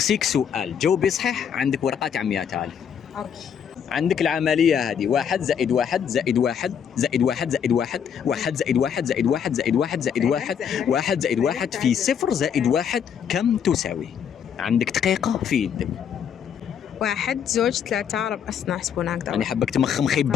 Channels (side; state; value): right; quieter; 8.0 dB